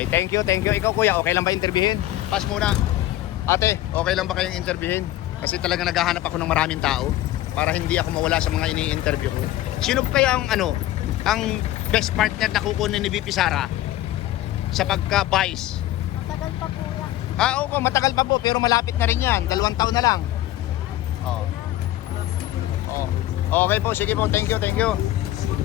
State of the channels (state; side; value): quieter; right; 14.7 dB